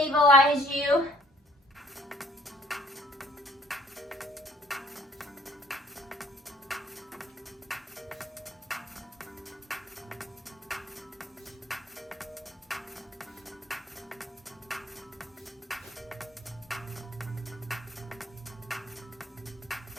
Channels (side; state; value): both; normal; correlation 0.59